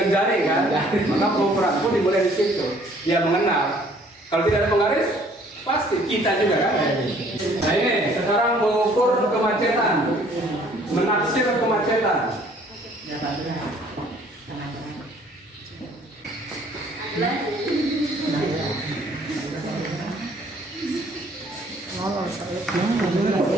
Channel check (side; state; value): both; normal; correlation 0.58